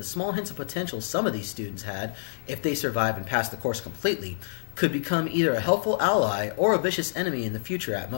small hints of potential some of these students had, if they survive and pass the course completely, could become either a helpful ally or a vicious enemy in the future at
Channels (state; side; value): silent; right; digital silence